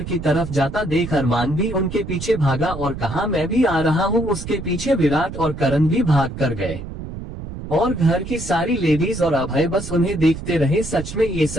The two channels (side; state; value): right; noise; rumble, 9 dB below the sound